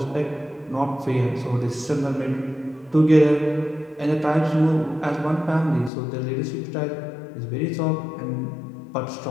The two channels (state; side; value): drops out; right; at 5.9 s